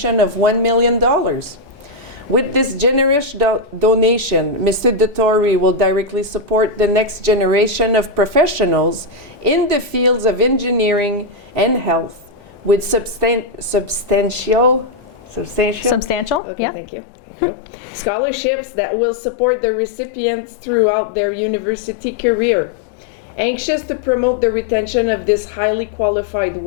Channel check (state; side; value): drops out; right; at 16.4 s